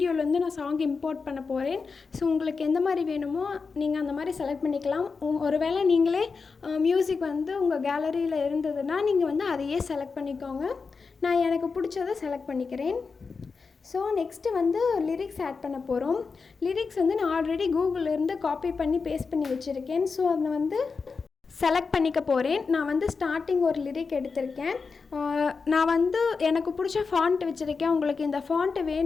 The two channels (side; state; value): right; quieter; 4.8 dB